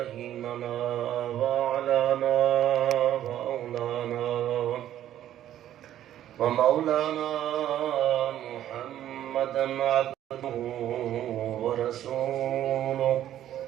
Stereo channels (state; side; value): quieter; left; 11.8 dB